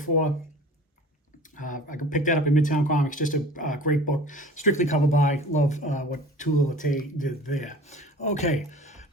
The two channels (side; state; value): both; normal; correlation 0.42